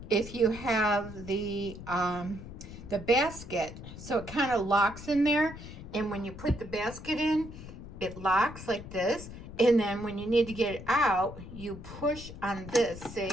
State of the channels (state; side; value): noise; left; rumble, 13 dB below the sound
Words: if you have the basket. So it kind of locks in there. And when you put the basket in, it locks like this. And then when you need to get it out, you push on this,